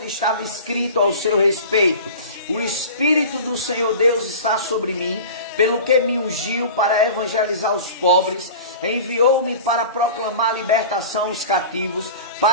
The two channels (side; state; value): both; inverted; correlation -0.36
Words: estava escrito ao seu respeito: o Espírito do Senhor Deus está sobre mim, pelo que me ungiu para evangelizar os pobres, enviou-me para proclamar libertação aos cativos,